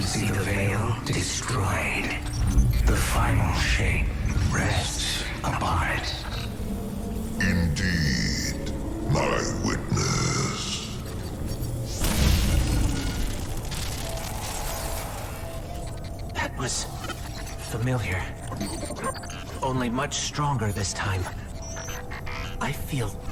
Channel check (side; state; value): both; identical; correlation 1.00